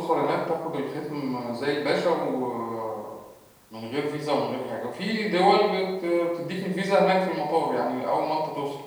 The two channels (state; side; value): identical; both; correlation 1.00